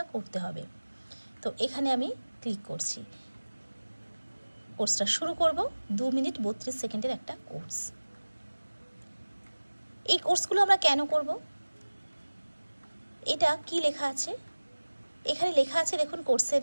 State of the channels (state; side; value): inverted; both; correlation -1.00